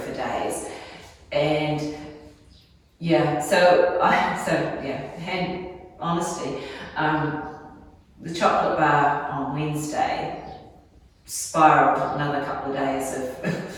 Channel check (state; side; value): identical; both; correlation 1.00